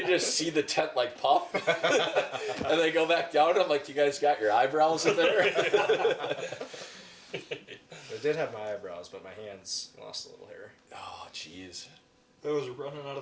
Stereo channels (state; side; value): identical; both; correlation 1.00